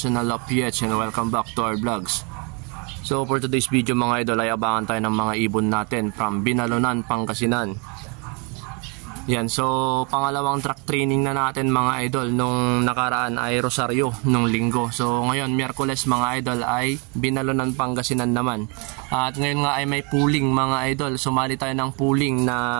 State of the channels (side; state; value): left; quieter; 33.5 dB